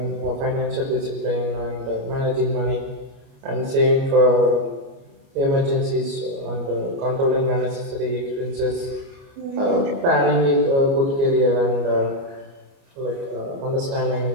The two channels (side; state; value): left; late; 29 ms